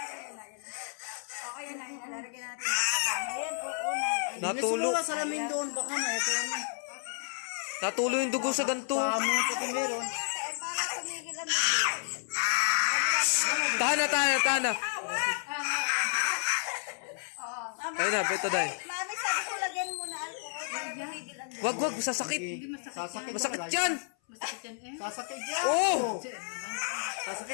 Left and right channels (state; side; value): silent; right; 57 dB below the other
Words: Natulo. May salamin doon. Baka na ito. Natulo yung dugo sa ganto. Pamo pati meron. Tahan na. Ayun na, betadine. Mami, sabi ko lagyan mo na alcohol para tumigil ang Wag, sasakit. Sasakit. Masakit yan. masakit yan eh. Sasakit yan. Oh!